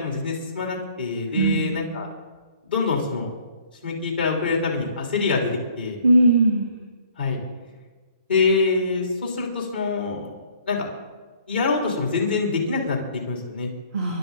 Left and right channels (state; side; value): inverted; both; correlation -0.59